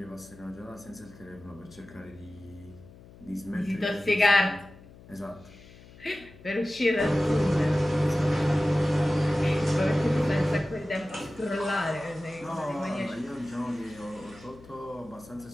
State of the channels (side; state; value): left; noise; hum, 21 dB below the sound